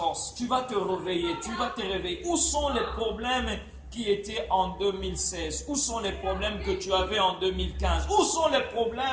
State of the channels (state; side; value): identical; both; correlation 1.00